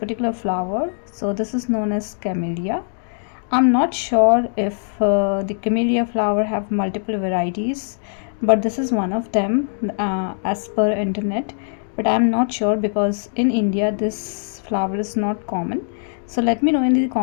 flower. So this is known as camellia. I'm not sure if the camellia flower have multiple varieties, but this is one of them as per internet, but I'm not sure because in India this flower is not common. So let me know in the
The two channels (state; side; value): silent; right; 61 dB below the other